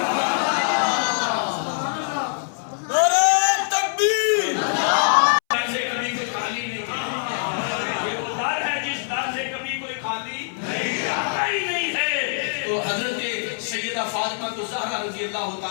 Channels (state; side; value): silent; right; 63 dB below the other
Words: فاطمہ الزہرا رضی اللہ